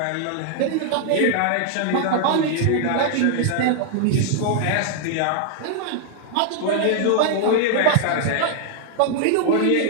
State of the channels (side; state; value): both; different; correlation 0.00